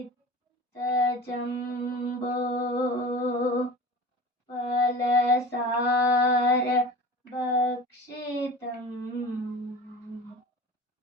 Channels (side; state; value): both; normal; correlation 0.36